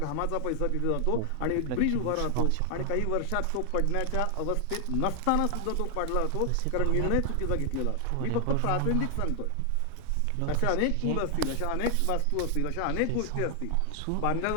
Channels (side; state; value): both; different; correlation 0.00